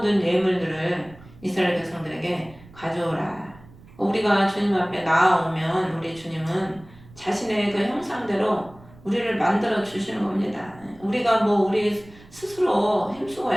예물들을 이스라엘 백성들에게 가져오라. 우리가 주님 앞에 나아오면 우리 주님은 자신의 그 형상대로 우리를 만들어 주시는 겁니다. 우리가 뭐 우리 스스로 힘쓰고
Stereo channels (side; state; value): right; noise; rumble, 23 dB below the sound